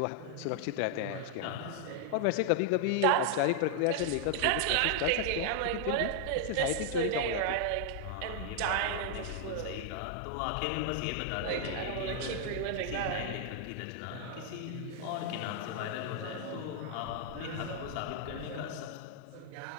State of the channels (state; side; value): different; both; correlation 0.00